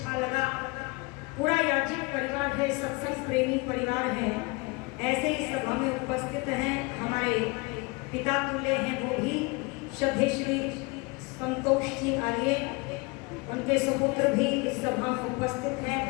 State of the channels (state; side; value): quieter; right; 27.3 dB